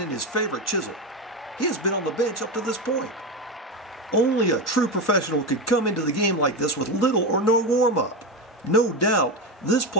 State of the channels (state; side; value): normal; both; correlation 0.15